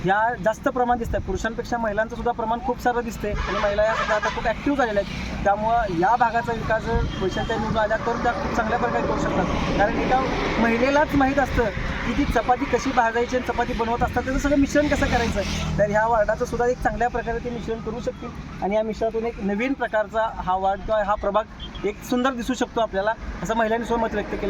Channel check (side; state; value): both; identical; correlation 1.00